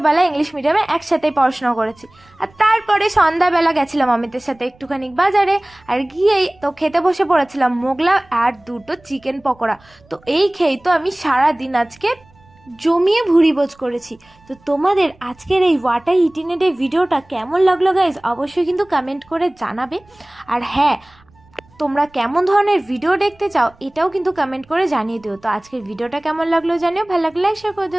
ইংলিশ মিডিয়ামে একসাথেই পড়াশোনা করেছি। আর তারপরে সন্ধ্যাবেলা গেছিলাম অমিতের সাথে একটুখানি বাজারে, আর গিয়েই তো খেতে বসে পড়েছিলাম মোগলা আর দুটো চিকেন পকোড়া। তো এই খেয়েই তো আমি সারাদিন আজকে জমিয়ে ভুড়িভোজ করেছি। তো তোমাদের আজকের এই ওয়াটার ইটিনেটের ভিডিওটা কেমন লাগলো গাইজ অবশ্যই কিন্তু কমেন্ট করে জানাবে। আর হ্যাঁ, তোমরা কেমন ধরনের ভিডিও দেখতে চাও এটাও কিন্তু কমেন্ট করে জানিয়ে দিও। তো আজকের ভিডিওটা কেমন লাগলো জানিও, ভালো লাগলে লাইক শেয়ার করে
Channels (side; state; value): right; noise; rumble, 29 dB below the sound